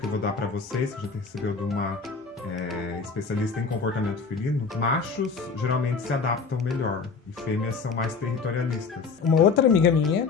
eu vou dar pra vocês, que a gente recebeu de uma especialista em comportamento felino, machos geralmente se adaptam melhor e fêmeas são mais territorialistas. uma outra amiga minha,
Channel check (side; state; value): right; quieter; 5.0 dB